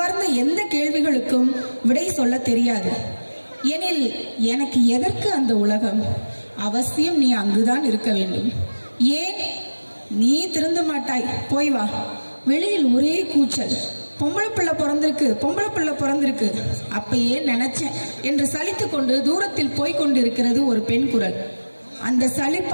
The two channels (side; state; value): both; inverted; correlation -1.00